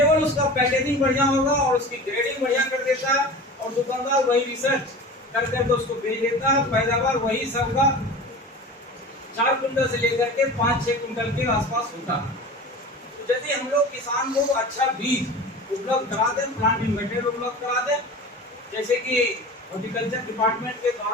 उसका पैकेजिंग बढ़िया होगा और उसकी ग्रेडिंग बढ़िया कर देता है और दुकानदार वही रिसर्च करके तो उसको भेज देता है। पैदावार वही सबका 4 कुंटल से लेकर के 5-6 कुंटल के आसपास होता है। तो यदि हम लोग किसान को अच्छा बीज उपलब्ध करा दें, प्लांटिंग मटेरियल उपलब्ध करा दें, जैसे कि हॉर्टिकल्चर डिपार्टमेंट के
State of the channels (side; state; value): both; normal; correlation 0.35